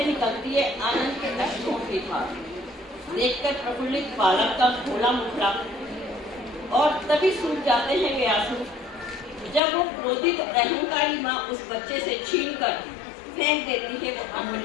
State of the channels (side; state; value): right; drops out; at 9.6 s